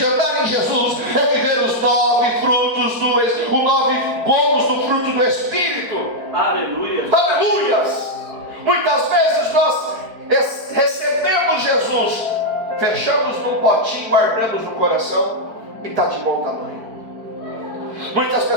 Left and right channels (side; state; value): left; late; 4.5 ms